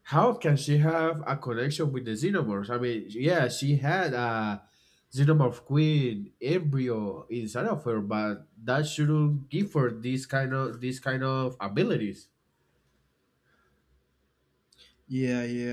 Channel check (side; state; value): both; identical; correlation 1.00